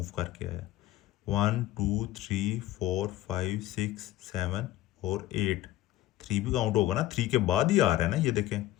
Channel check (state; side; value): quieter; right; 14.9 dB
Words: करके आया, 1 2 3 4 5 6 7 और 8। 3 भी काउंट होगा ना, 3 के बाद ही आ रहा है ना, ये देखें,